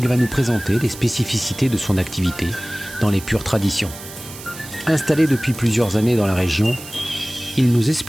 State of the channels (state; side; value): noise; right; hiss, 14 dB below the sound